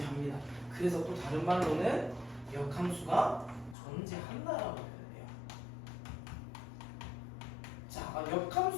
그래서 또 다른 말로는 역함수가 존재한다라고 해요. 자,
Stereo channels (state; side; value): drops out; right; at 3.8 s